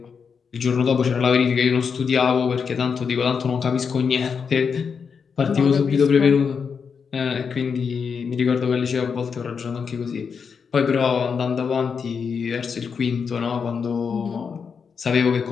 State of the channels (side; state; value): right; quieter; 6.1 dB